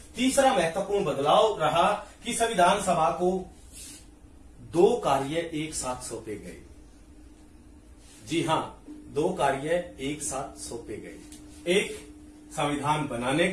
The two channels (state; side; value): identical; both; correlation 1.00